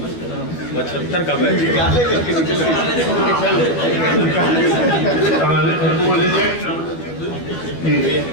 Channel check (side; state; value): right; late; 12 ms